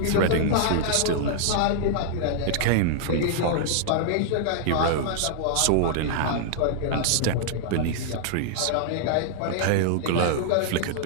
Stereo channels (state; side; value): different; both; correlation -0.01